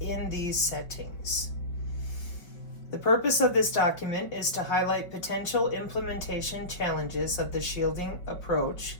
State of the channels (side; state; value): right; late; 5.3 ms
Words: these settings. The purpose of this document is to highlight potential implementation challenges of the shielding approach